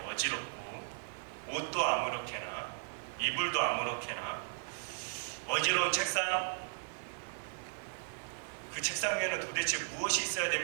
어지럽고 옷도 아무렇게나 이불도 아무렇게나 어지러운 책상, 그 책상 위에는 도대체 무엇이 있어야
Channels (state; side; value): silent; left; 54 dB below the other